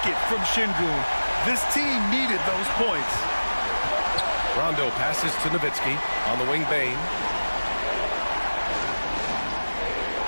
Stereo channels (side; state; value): both; inverted; correlation -1.00